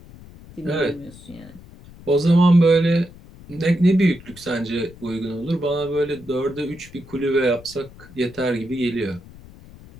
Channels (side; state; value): left; noise; rumble, 20 dB below the sound